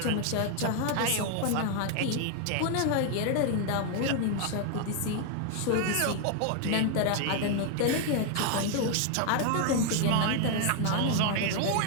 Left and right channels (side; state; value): both; different; correlation 0.00